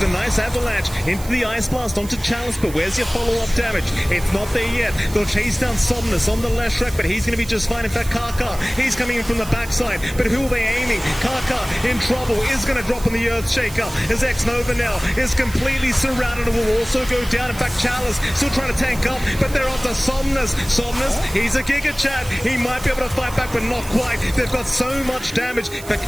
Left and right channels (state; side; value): noise; right; hiss, 15 dB below the sound